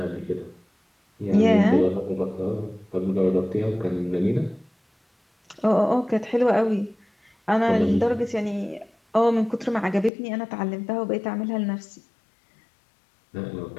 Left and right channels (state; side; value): drops out; right; at 10.1 s